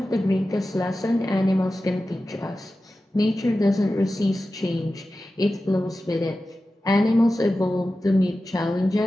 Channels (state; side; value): normal; both; correlation 0.94